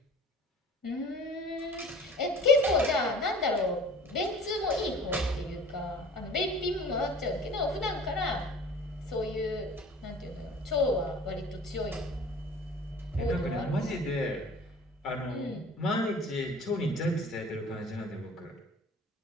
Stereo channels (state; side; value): normal; both; correlation 0.45